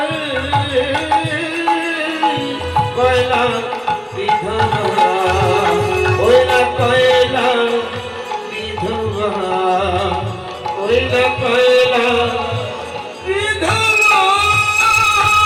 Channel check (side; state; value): both; identical; correlation 1.00